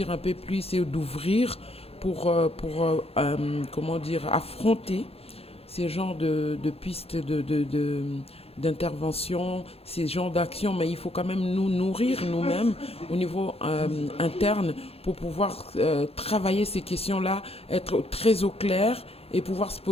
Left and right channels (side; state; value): right; late; 0.29 ms